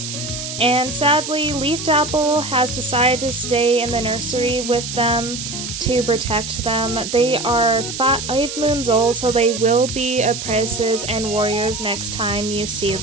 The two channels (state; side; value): noise; right; hiss, 7 dB below the sound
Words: And sadly, Leafed Apple has decided to stay in the nursery with them to protect them. They are 5 moons old, so they will be apprentices and warriors next time you see